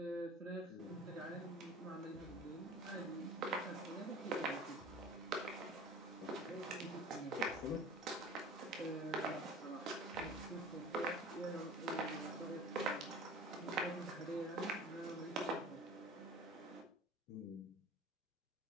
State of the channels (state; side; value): normal; both; correlation 0.42